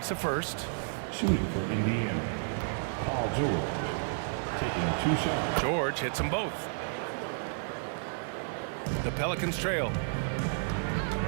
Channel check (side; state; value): left; silent; digital silence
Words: a first. Shooting for Indiana, Paul George. Taking 2 shots. George hits them both. The Pelicans trail.